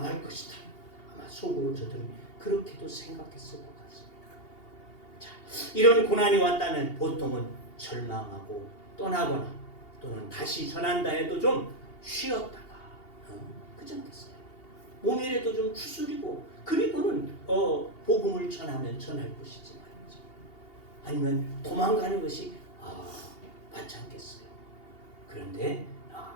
것이다. 아마 속으로 저들은 그렇게도 생각했을 것 같습니다. 자, 이런 고난이 왔다면 보통은 절망하고 떠나거나 또는 다시 전한다 해도 좀 쉬었다가 그렇지 않겠어요? 몸이라도 좀 추스리고 그리고는 복음을 전하면 전할 것이지 말이죠. 아니면 도망가는 것이 맞지 않겠어요? 그런데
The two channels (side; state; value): right; late; 2.8 ms